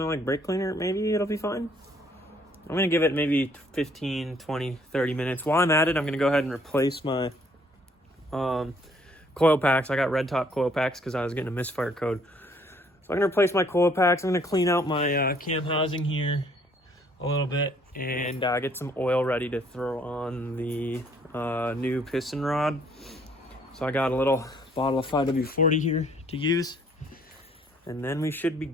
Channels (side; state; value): both; normal; correlation 0.63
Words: like brake cleaner, maybe it'll be fine. I'm going to give it maybe 15, 20, 30 minutes. While I'm at it, I'm going to go ahead and replace my coil packs. I got red top coil packs because I was getting a misfire code. So I'm going to replace my coil packs. I'm going to clean out my cam housing here a little bit and get some oil ready to throw on the new piston rod. So I got a little bottle of 5W40 here to use. And then we should be